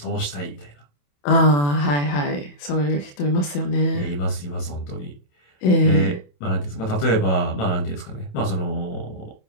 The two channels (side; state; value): right; late; 27 ms